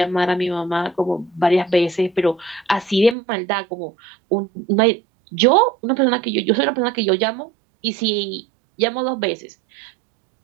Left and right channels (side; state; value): left; drops out; at 3.2 s